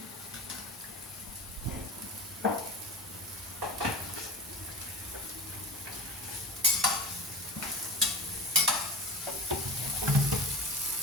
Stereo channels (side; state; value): both; normal; correlation 0.31